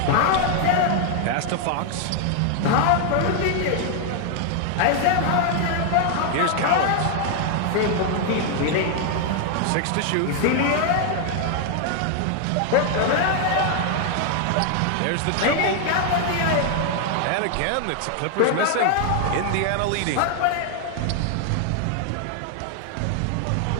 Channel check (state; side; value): different; both; correlation 0.00